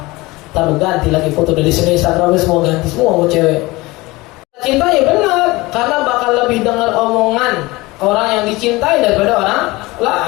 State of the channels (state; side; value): quieter; right; 21.6 dB